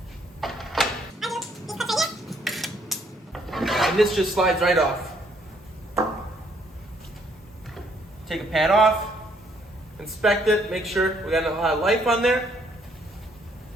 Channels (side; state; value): both; normal; correlation 0.68